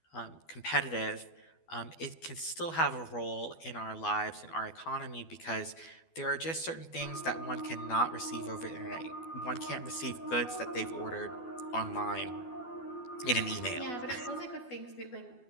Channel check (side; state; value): right; late; 12 ms